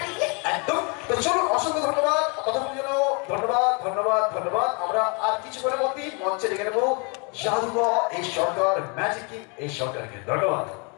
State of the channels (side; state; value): right; quieter; 33.4 dB